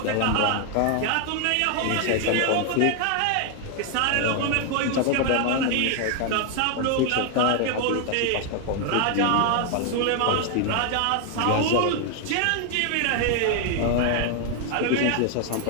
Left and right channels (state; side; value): different; both; correlation 0.00